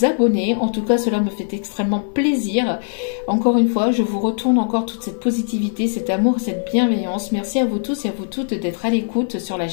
abonner. En tout cas, cela me fait extrêmement plaisir. Encore une fois, je vous retourne encore toute cette positivité, cet amour, cette bienveillance. Merci à vous tous et à vous toutes d'être à l'écoute sur la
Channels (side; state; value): right; silent; 57 dB below the other